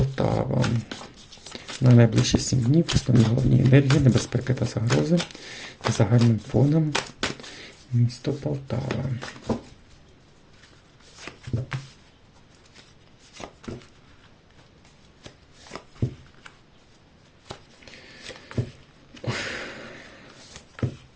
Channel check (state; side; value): identical; both; correlation 1.00